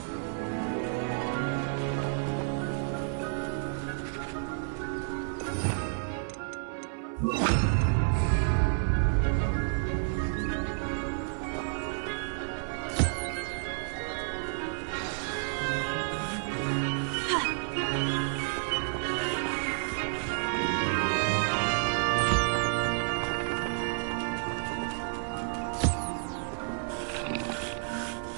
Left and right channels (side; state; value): left; silent; 57 dB below the other